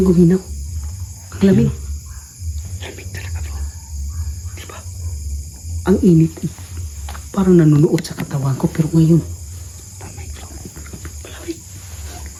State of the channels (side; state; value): both; identical; correlation 1.00